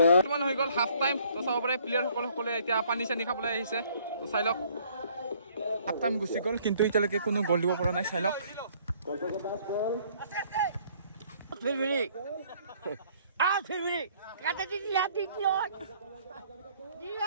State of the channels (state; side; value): inverted; both; correlation -0.61